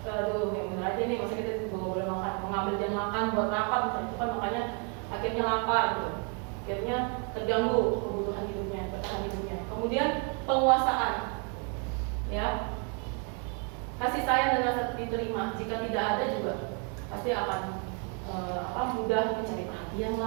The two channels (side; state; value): left; quieter; 38.5 dB